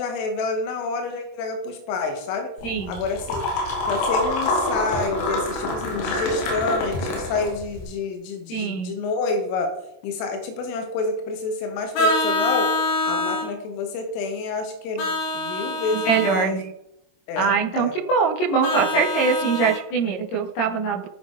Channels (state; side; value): late; right; 22 ms